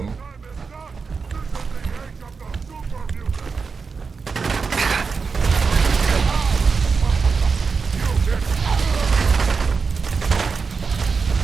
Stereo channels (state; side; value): quieter; left; 5.1 dB